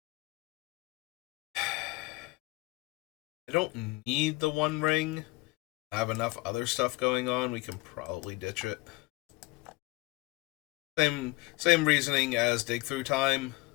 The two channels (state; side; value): quieter; right; 23.4 dB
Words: I don't need the One Ring. I have enough other stuff going on. We can probably ditch it. Same reasoning as Dig Through Time.